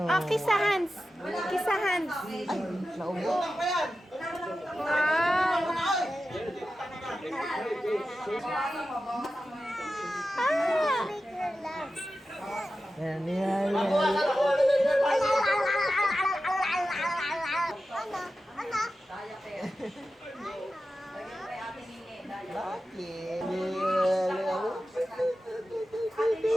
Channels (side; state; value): both; normal; correlation 0.92